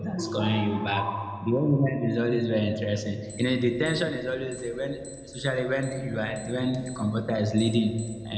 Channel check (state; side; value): identical; both; correlation 1.00